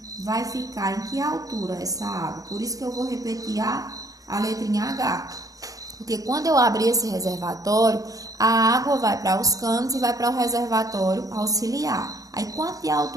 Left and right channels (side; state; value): left; late; 0.17 ms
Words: Vai ficar em que altura essa água? Por isso que eu vou repetir a letrinha H. Porque quando eu abrir esse reservatório, a água vai para os canos e vai para o reservatório auxiliar. Aí, quanto de